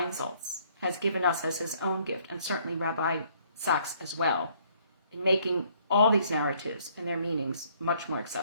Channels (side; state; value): both; inverted; correlation -0.64